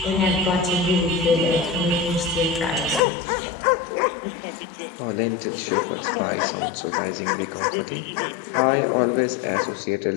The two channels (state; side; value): drops out; right; at 3.0 s